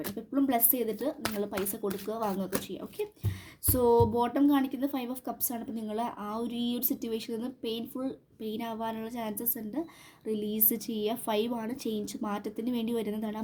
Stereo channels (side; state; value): both; identical; correlation 1.00